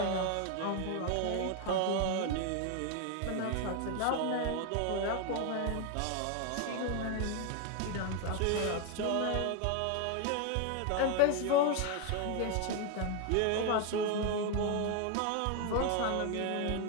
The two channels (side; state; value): both; different; correlation 0.01